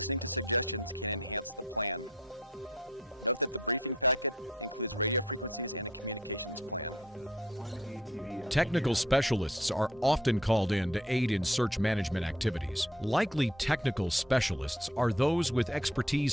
to suggestions can enhance the plan. Note that the briefing packet includes radio frequencies and a communications plan. Technical specialists are often called in to aid in search management activities. Likely technical specialists are those with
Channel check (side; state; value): both; normal; correlation 0.58